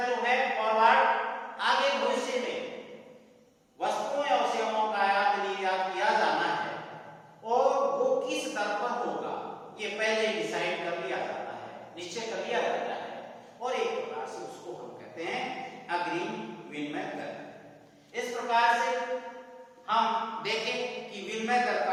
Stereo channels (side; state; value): both; identical; correlation 1.00